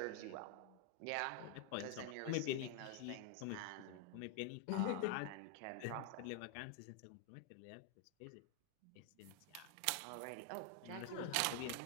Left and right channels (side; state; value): both; different; correlation 0.00